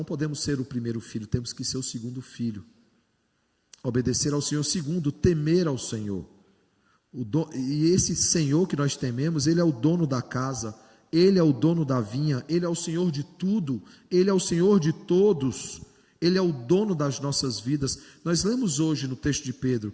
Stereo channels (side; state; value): both; identical; correlation 1.00